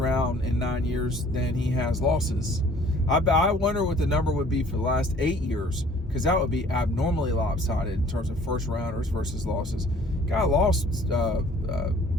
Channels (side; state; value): both; normal; correlation 0.54